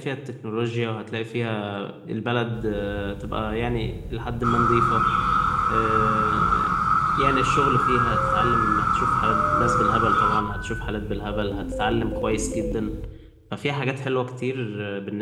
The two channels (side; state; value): both; identical; correlation 1.00